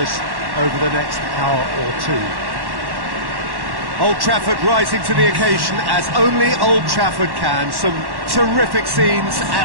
over the next hour or two. Old Trafford rising to the occasion as only Old Trafford can. Some terrific scenes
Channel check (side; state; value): left; late; 1.1 ms